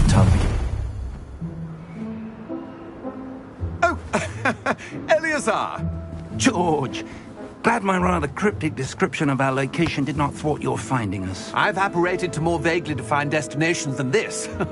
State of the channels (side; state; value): both; identical; correlation 1.00